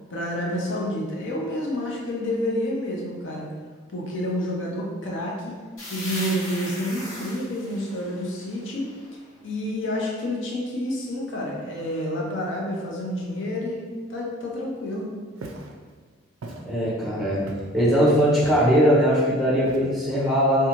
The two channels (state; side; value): normal; both; correlation 0.48